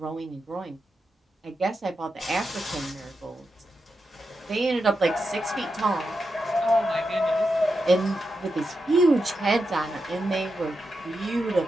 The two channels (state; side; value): normal; both; correlation 0.87